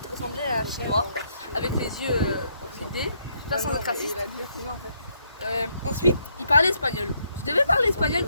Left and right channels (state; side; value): inverted; both; correlation -0.73